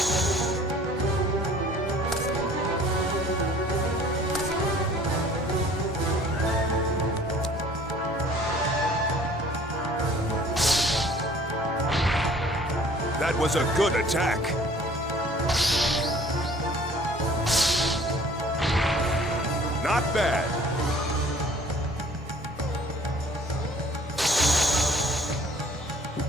That was a good attack. Not bad.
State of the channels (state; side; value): normal; both; correlation 0.53